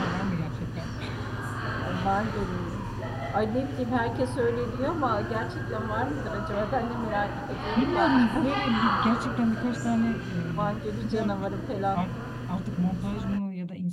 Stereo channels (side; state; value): both; identical; correlation 1.00